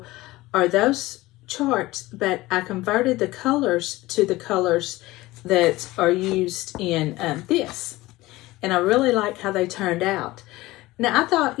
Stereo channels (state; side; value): quieter; right; 18.9 dB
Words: are those charts, but I converted the colors to the colors that are used in this. And I really like how they turned out. Now, I thought,